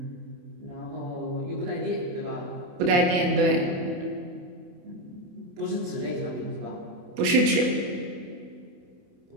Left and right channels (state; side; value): late; left; 28 ms